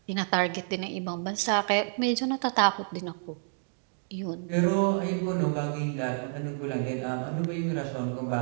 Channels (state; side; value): silent; left; digital silence